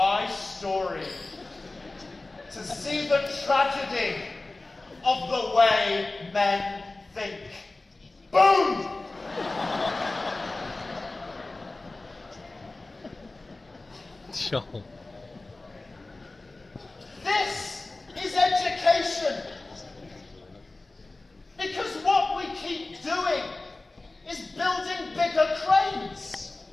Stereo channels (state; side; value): quieter; right; 3.1 dB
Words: story to see the tragedy of the way men think. Boom! Sure. This is education. Because what we keep doing is building bigger cranes.